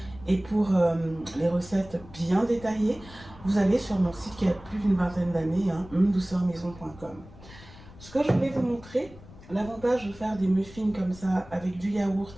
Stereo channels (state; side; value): noise; left; rumble, 19 dB below the sound